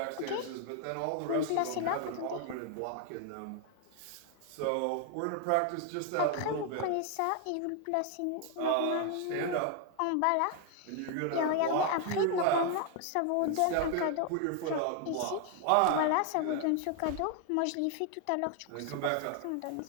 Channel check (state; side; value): different; both; correlation 0.01